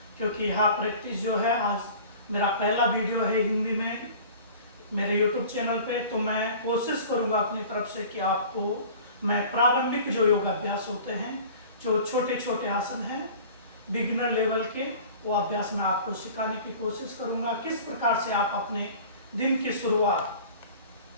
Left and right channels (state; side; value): inverted; both; correlation -0.43